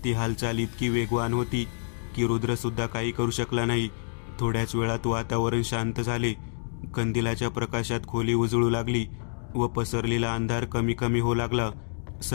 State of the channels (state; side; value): silent; right; digital silence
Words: ती हालचाल इतकी वेगवान होती की रुद्र सुद्धा काही करू शकला नाही. थोड्याच वेळात वातावरण शांत झाले. कंदिलाच्या प्रकाशात खोली उजळू लागली व पसरलेला अंधार कमी कमी होऊ लागला.